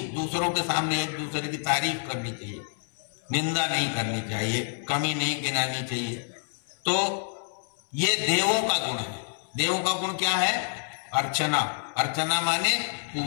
दूसरों के सामने एक दूसरे की तारीफ करनी चाहिए, निंदा नहीं करनी चाहिए, कमी नहीं गिनानी चाहिए। तो ये देवों का गुण है। देवों का गुण क्या है? अर्चना। अर्चना माने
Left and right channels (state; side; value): silent; right; 60 dB below the other